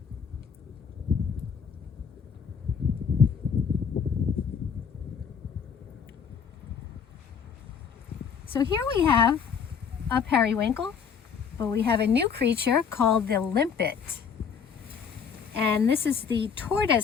So here we have a periwinkle, but we have a new creature called the limpet. And this is the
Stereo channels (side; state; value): right; quieter; 6.7 dB